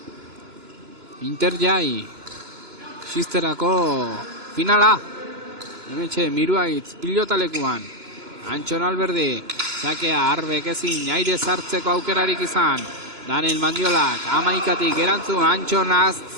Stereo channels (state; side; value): late; left; 2.9 ms